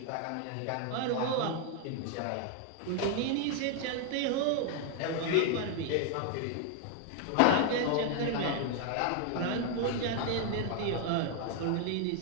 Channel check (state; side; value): different; both; correlation 0.00